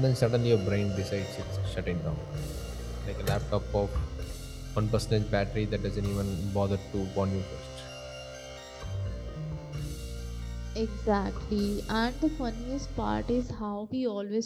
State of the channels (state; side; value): identical; both; correlation 1.00